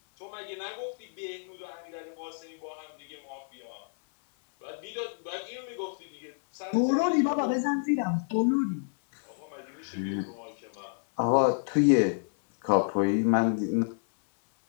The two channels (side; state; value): right; silent; 58 dB below the other